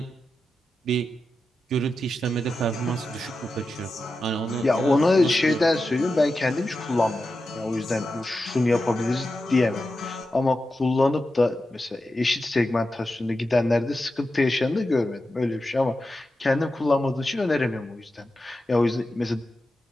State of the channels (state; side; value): normal; both; correlation 0.91